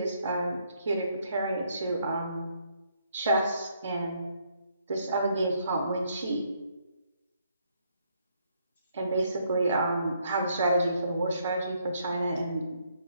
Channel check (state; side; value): inverted; both; correlation -0.71